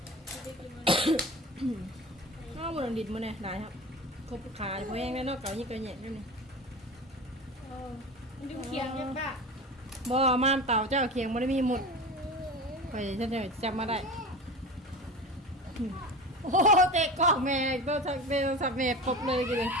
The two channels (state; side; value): normal; both; correlation 0.31